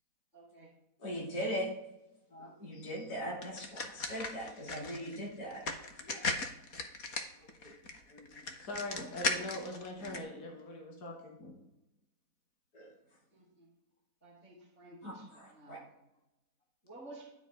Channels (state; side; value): late; right; 4.2 ms